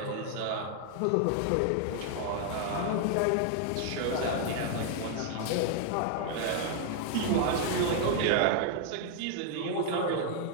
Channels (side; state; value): both; different; correlation 0.00